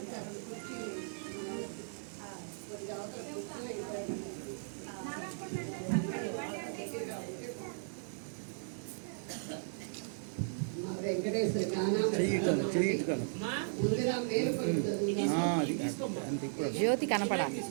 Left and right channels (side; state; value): left; silent; 54 dB below the other